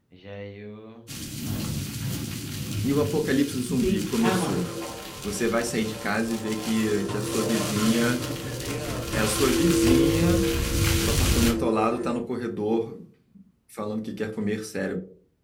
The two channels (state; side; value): identical; both; correlation 1.00